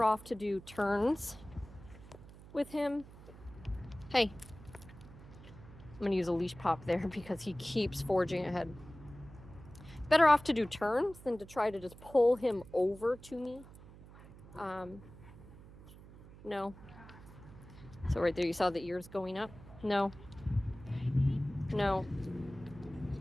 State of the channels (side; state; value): right; noise; hum, 18 dB below the sound